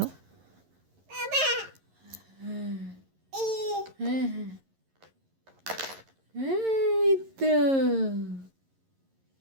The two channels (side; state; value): left; late; 11 ms